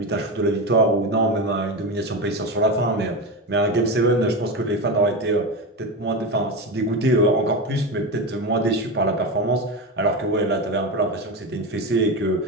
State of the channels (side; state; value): both; normal; correlation 0.18